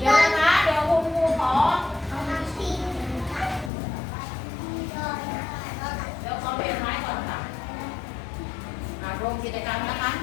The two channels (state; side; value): drops out; right; at 3.7 s